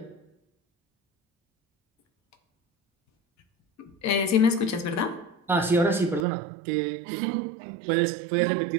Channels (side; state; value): left; drops out; at 6.2 s